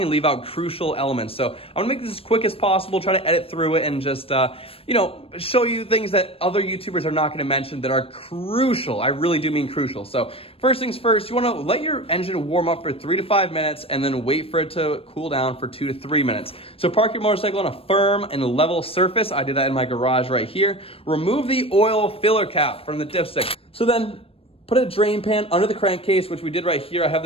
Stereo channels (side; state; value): right; late; 0.28 ms